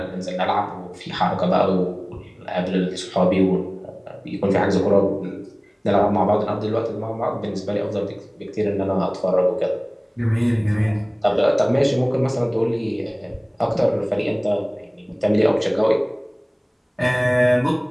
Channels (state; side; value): identical; both; correlation 1.00